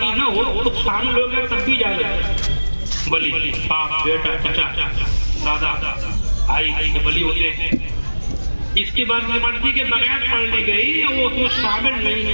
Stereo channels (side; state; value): both; inverted; correlation -1.00